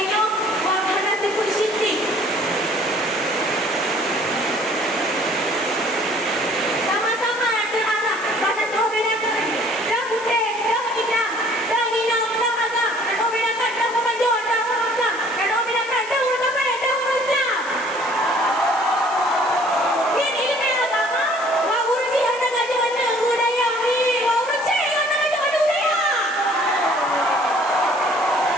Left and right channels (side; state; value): left; noise; hiss, 18 dB below the sound